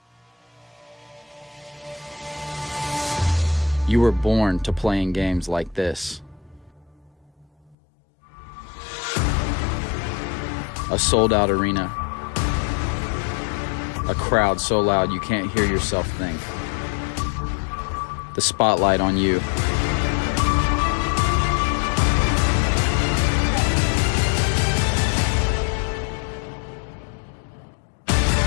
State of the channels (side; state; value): right; drops out; at 7.8 s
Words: You were born to play in games like this. A sold-out arena. A crowd so loud you can't hear yourself think. The spotlight on you.